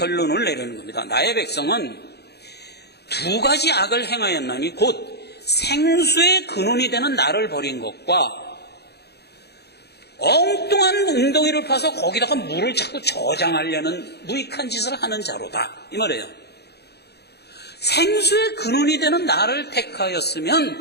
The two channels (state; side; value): late; right; 0.48 ms